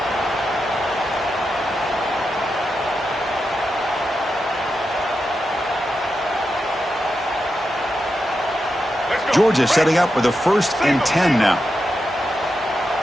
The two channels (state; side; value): normal; both; correlation 0.88